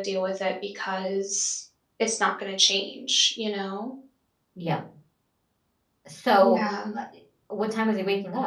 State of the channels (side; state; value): both; identical; correlation 1.00